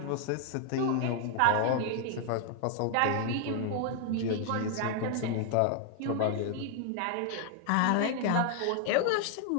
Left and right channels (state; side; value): different; both; correlation 0.00